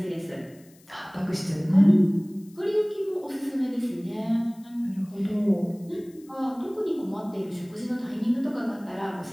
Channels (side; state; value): left; noise; hiss, 28 dB below the sound